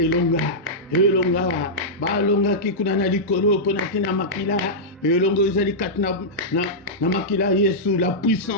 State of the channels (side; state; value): both; normal; correlation -0.10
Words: balonga kikunana likolo pona kina makila, elongo ezali katna na makila Yesu, la